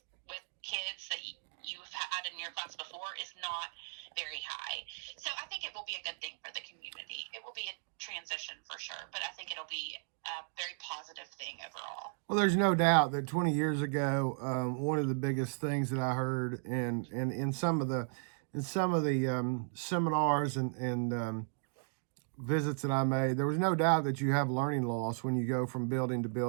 with kids that you've had in your class before is not very high. So I think it will be a good thing for the community. It will be a transition for sure, but I think it'll be a very positive thing overall. Well, there's no doubt that 20 years ago, one of the biggest things that I heard in some of the seminars and visits that I made, there was no doubt that you have learning loss when you go from building to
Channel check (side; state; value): left; silent; digital silence